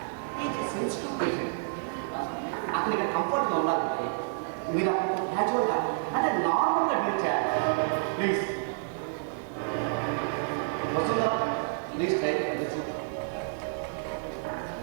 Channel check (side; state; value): left; silent; digital silence